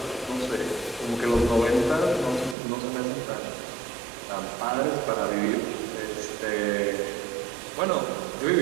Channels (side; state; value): left; drops out; at 2.6 s